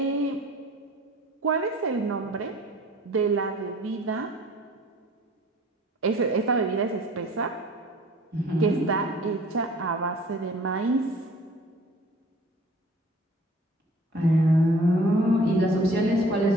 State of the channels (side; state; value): both; normal; correlation 0.50